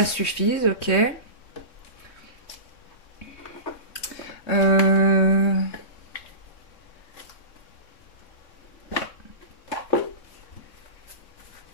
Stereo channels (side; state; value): right; late; 3.6 ms